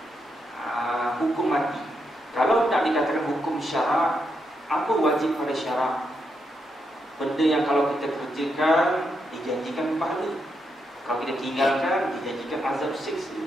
Hukum mati. Kalau nak dikatakan hukum syarak, apa wajib pada syarak? Benda yang kalau kita kerjakan dijanjikan pahala, kalau kita tinggalkan dijanjikan azab siksa.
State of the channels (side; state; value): both; normal; correlation 0.82